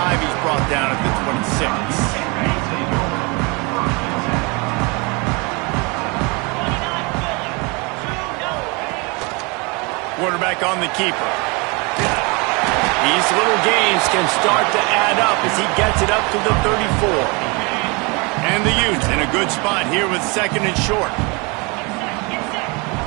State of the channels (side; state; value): left; quieter; 29.1 dB